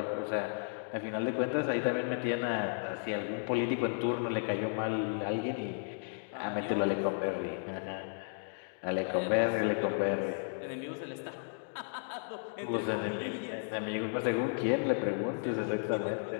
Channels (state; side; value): silent; right; digital silence